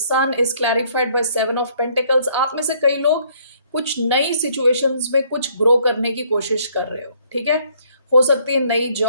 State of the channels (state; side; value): inverted; both; correlation -0.64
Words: is clarified by seven of pentacles. आप में से कई लोग कुछ नई सिचुएशंस में कुछ ग्रो करने की कोशिश कर रहे हो. ठीक है, हो सकती है नई